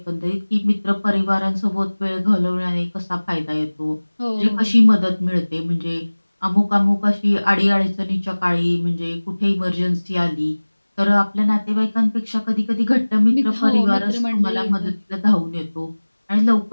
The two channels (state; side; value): inverted; both; correlation -1.00